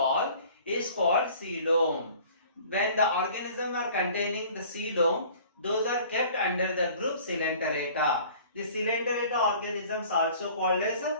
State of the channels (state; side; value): inverted; both; correlation -0.49